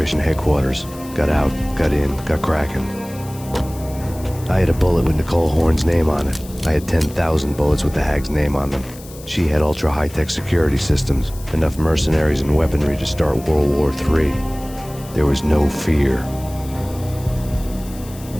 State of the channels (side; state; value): left; noise; hiss, 19 dB below the sound